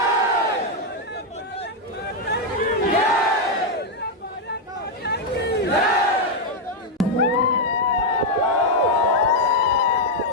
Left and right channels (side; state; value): both; normal; correlation 0.01